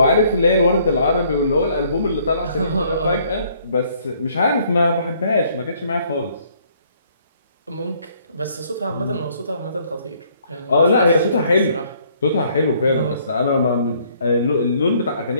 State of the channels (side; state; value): both; inverted; correlation -0.64